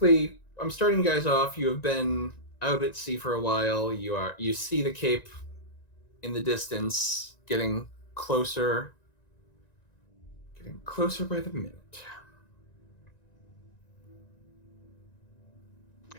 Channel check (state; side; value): late; right; 1.9 ms